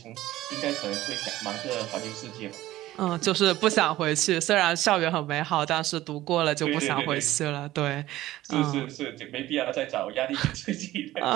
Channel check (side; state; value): left; quieter; 15.7 dB